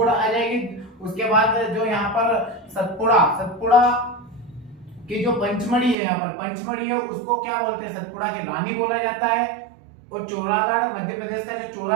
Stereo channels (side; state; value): left; drops out; at 6.0 s